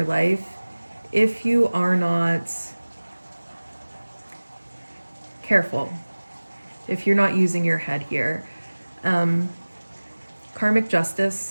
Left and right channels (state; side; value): inverted; both; correlation -1.00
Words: life if you are not careful, if you're not using your head here. Karmic